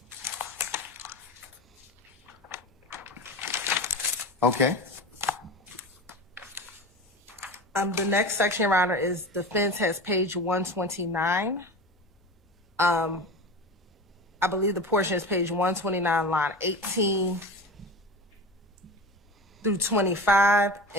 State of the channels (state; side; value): normal; both; correlation 0.30